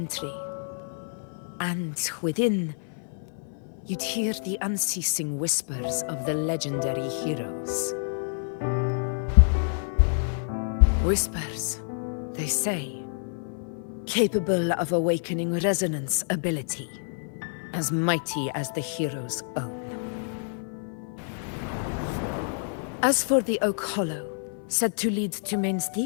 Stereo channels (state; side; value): silent; right; 59 dB below the other